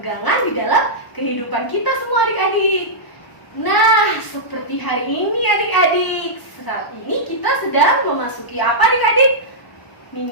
di dalam kehidupan kita semua adik-adik. Nah, seperti hari ini adik-adik, saat ini kita sedang memasuki apa adik-adik?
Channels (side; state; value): right; late; 1.0 ms